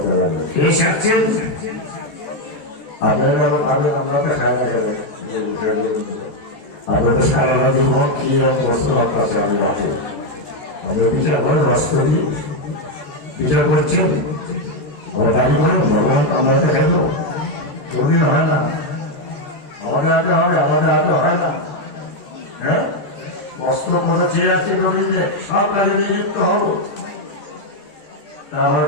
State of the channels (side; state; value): right; late; 14 ms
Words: লাগবে। কে সারছেন আপনারা? আমরা তো খাই না, আপনারা তো সারা জীবন কি বস্তু আপনার আমি রাখি, আমরা বিচার করে রস করি, বিচার করছেন, আমরা দাবি করেন ভগবান আমরা খাইল, কোনদিন হয় না, আমাদের হাতে হবে, আমাদের হাতে হয় না। হ্যাঁ, কষ্ট করে চেয়ে আছে রবীন্দ্র সব কাজে নিযুক্ত হবো। তারপর